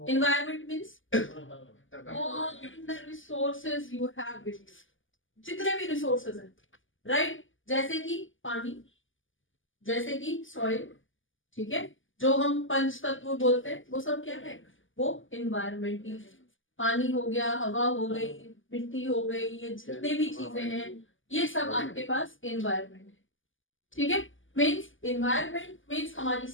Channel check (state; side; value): late; right; 0.58 ms